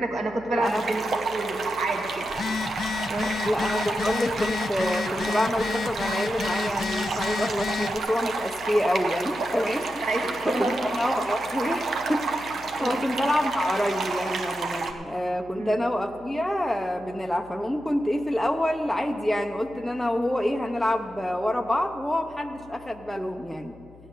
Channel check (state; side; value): noise; left; hum, 23 dB below the sound